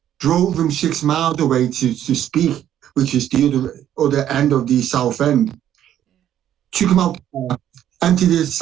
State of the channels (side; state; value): left; quieter; 10.9 dB